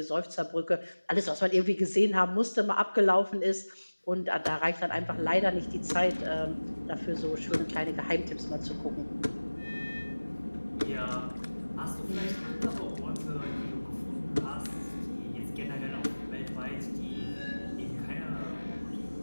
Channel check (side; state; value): both; inverted; correlation -1.00